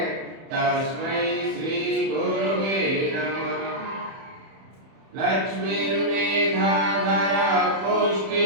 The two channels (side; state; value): left; late; 31 ms